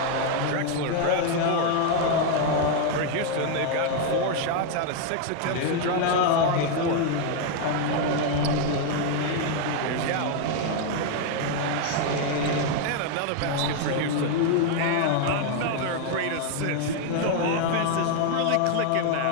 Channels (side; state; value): both; different; correlation 0.01